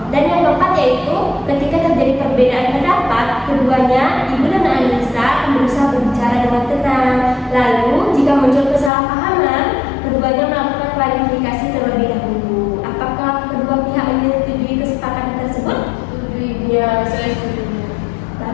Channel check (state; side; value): drops out; right; at 8.9 s